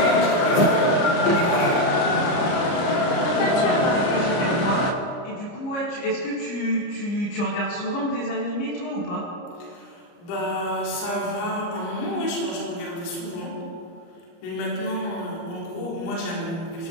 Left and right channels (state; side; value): late; right; 30 ms